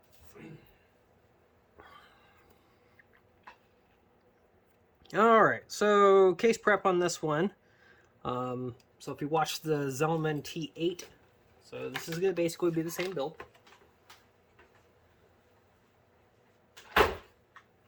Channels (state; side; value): identical; both; correlation 1.00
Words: Alright, so case prep on this one. So if you watch the Zelman T8, so this is going to basically be the same build.